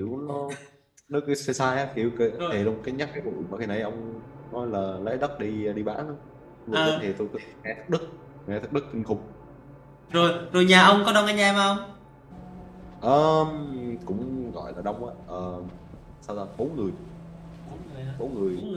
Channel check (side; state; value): both; identical; correlation 1.00